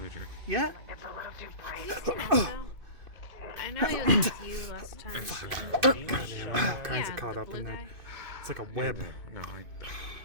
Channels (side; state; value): left; late; 2.5 ms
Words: Yeah? I know he was with you last time. Fuck. Goddamn, I'm all kinds of caught up in there. It's like a web.